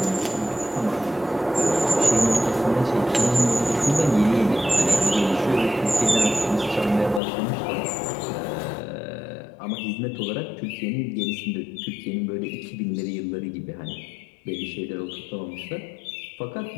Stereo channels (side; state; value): right; drops out; at 7.2 s